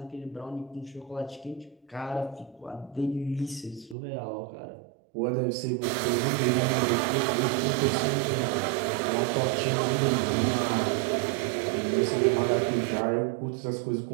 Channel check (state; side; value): drops out; left; at 4.0 s